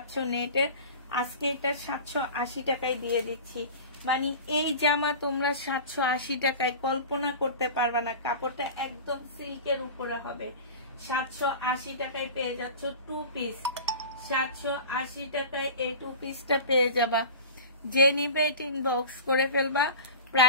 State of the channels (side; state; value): both; inverted; correlation -0.35